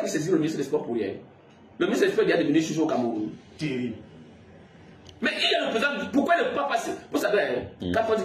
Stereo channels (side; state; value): both; identical; correlation 1.00